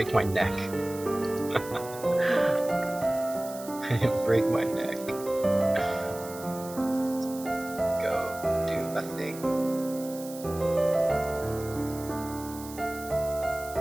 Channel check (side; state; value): right; noise; hiss, 15 dB below the sound